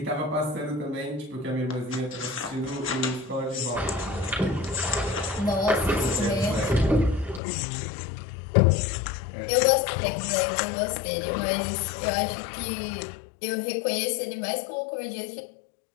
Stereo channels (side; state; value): right; drops out; at 7.4 s